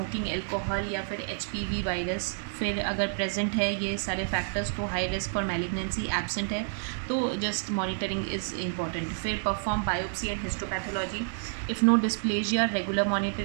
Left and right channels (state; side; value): silent; left; digital silence